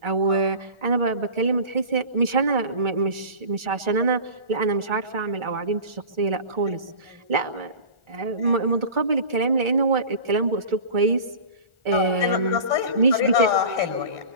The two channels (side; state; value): left; late; 1.4 ms